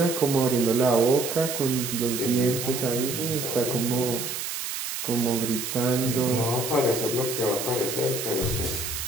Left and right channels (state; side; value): noise; right; hiss, 5 dB below the sound